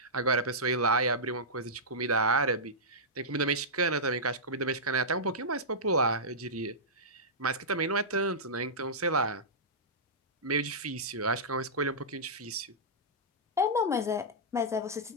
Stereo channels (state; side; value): normal; both; correlation -0.14